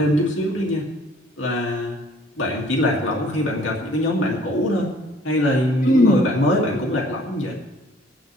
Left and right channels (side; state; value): both; normal; correlation 0.56